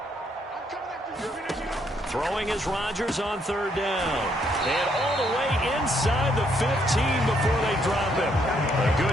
Throwing is Rodgers on 3rd down. And all the way inside the 15 before they drop him. A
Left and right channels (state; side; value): normal; both; correlation 0.72